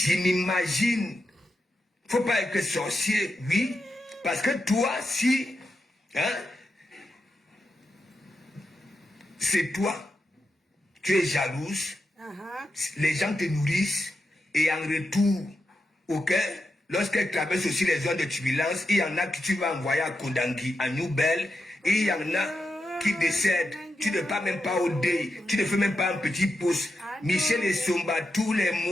m'imagine. Faut pas être sorcier, oui, parce que toi, si, hein, c'est toi, tu es jalouse, les gens te nourrissent, et en retour, ok, lorsqu'elle traverse aussi les zones de turbulence, il y en a qui tu vas envoyer à Kondangui, à Nouvelle, et il y en a qui décèdent. Tu ne pars même pas au deuil, tu ne fais même pas un petit pouce. Michel et Somba, tous les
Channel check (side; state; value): both; normal; correlation 0.87